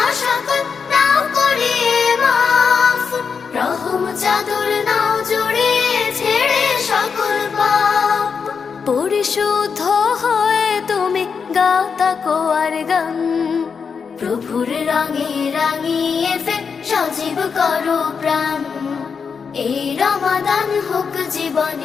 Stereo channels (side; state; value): right; quieter; 5.9 dB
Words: সকল নাও করে মাফ, রহম চাদর নাও জড়িয়ে ছেড়ে সকল পাপ। পরিশুদ্ধ হয়ে তুমি গাও তাকওয়ার গান। প্রভুর রঙে রাঙিয়ে ফের সজীব করো প্রাণ। এই রমাদান হোক